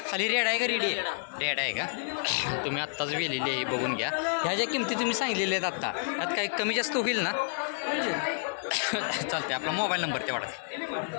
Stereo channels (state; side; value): silent; right; digital silence